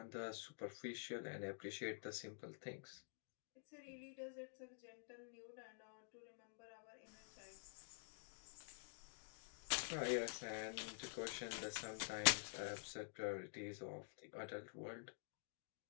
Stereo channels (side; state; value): right; silent; digital silence